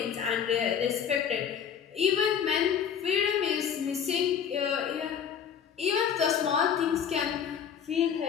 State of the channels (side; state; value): right; quieter; 7.9 dB